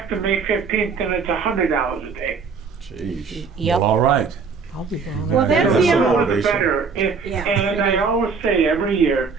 May 15th, then it's $100 a day. Jeez. Yep. All right. I'll be going. Well, over that's there. the The other more one. the better. Yeah. And I always say every year,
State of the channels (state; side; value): quieter; left; 5.3 dB